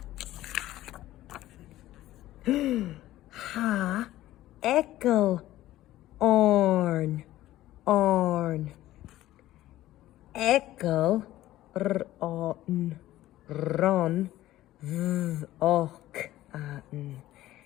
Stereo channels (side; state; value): right; quieter; 15.0 dB